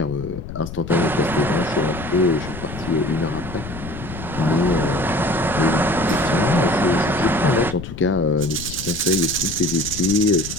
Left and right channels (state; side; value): noise; left; rumble, 11 dB below the sound